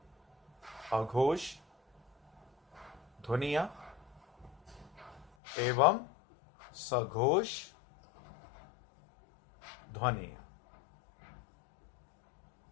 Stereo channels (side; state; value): right; drops out; at 5.3 s